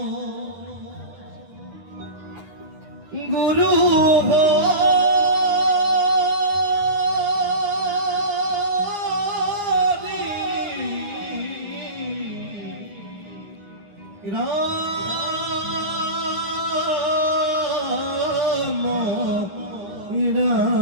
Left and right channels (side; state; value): left; late; 9.6 ms